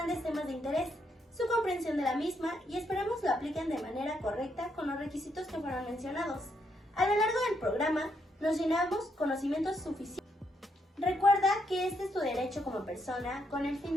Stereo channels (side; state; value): both; normal; correlation 0.77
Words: temas de interés, su comprensión de la misma, y esperemos lo apliquen de manera correcta con los requisitos que fueron mencionados. A lo largo del programa, nos llenamos conocimientos suficientes. Recuerda que este es tu derecho como persona con el